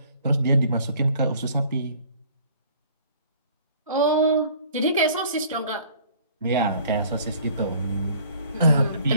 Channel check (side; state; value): both; inverted; correlation -0.54